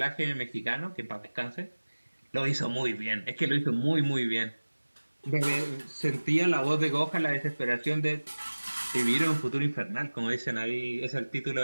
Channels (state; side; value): inverted; both; correlation -1.00